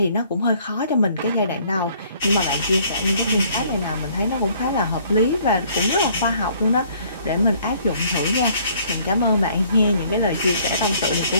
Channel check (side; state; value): both; inverted; correlation -0.61